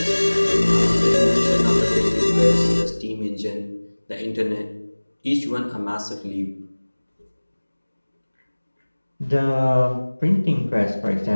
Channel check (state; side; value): inverted; both; correlation -1.00